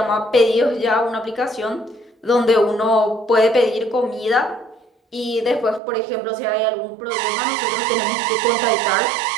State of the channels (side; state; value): left; drops out; at 5.8 s